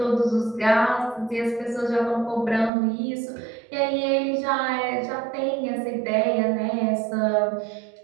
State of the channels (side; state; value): left; drops out; at 2.7 s